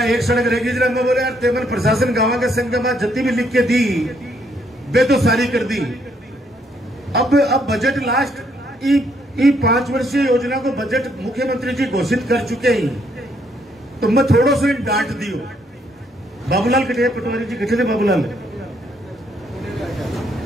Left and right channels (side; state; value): both; normal; correlation 0.71